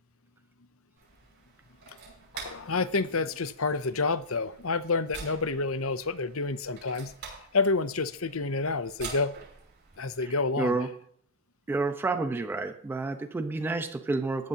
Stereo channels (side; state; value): both; normal; correlation -0.04